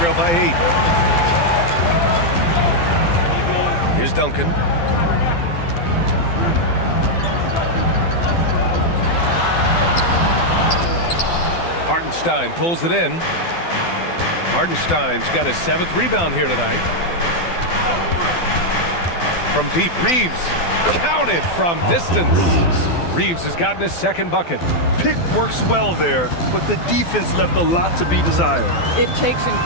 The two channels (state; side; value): late; right; 12 ms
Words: by 8. Here's Duncan. Hartenstein pulls it in. Hartenstein's got his 7th rebound here tonight. From deep, Reeves counted from distance. Reeves has gotten his 2nd bucket. Pick works well there, but the defense left a lot to be desired. It takes